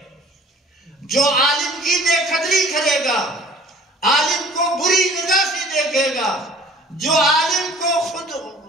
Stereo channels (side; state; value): both; normal; correlation 0.49